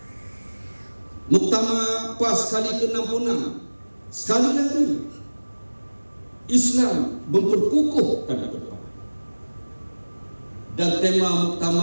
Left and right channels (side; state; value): both; inverted; correlation -1.00